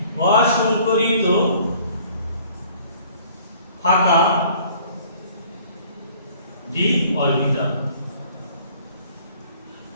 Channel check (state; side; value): inverted; both; correlation -0.55